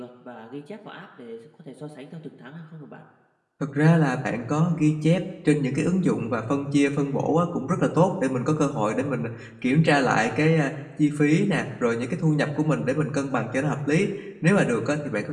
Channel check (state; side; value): identical; both; correlation 1.00